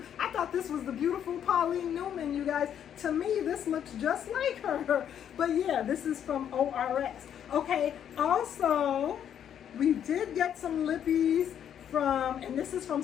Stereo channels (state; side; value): quieter; right; 9.3 dB